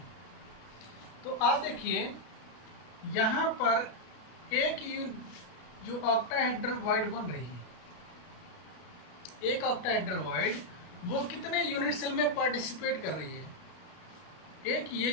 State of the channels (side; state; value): right; late; 33 ms